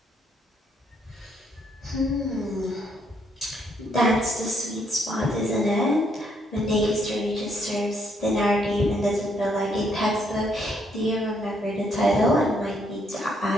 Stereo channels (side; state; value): both; normal; correlation 0.72